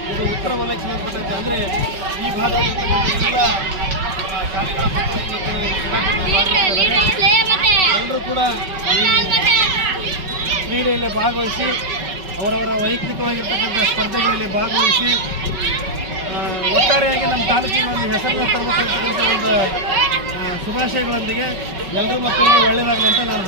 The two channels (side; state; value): left; late; 5.3 ms